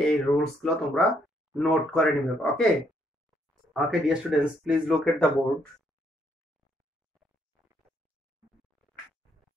এই রুলসগুলো তোমরা নোট করে নিবে। Okay okay dear students, please look at the board.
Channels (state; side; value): normal; both; correlation 0.72